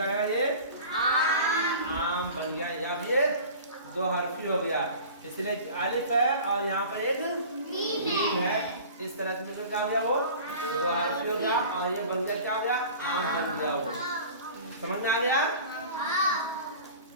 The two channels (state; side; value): inverted; both; correlation -0.41